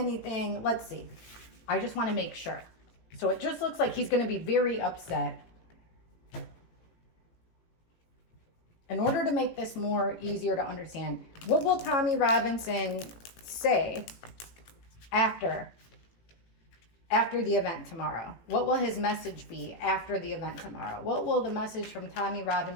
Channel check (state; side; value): late; right; 18 ms